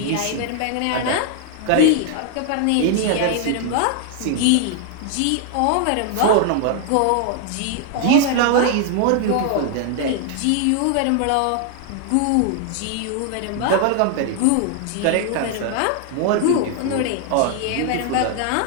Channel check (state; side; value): different; both; correlation 0.00